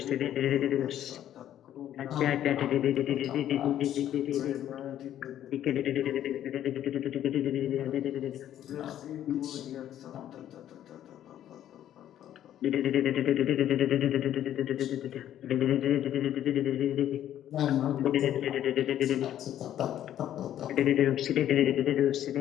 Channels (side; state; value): right; quieter; 11.4 dB